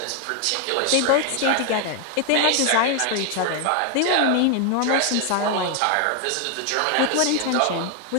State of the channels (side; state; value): both; different; correlation 0.01